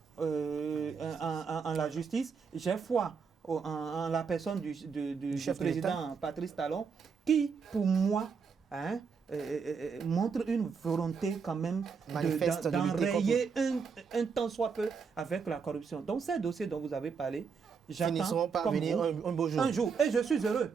en la justice, j'ai foi en la personne du chef président Patrice Talon, qui, pour moi, montre une volonté quand même d'enrayer un tant soit peu avec la corruption. Donc, ces dossiers dont vous avez parlé, finiront par venir un beau jour. Un jour. Et je suis heureux.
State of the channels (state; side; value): quieter; left; 5.8 dB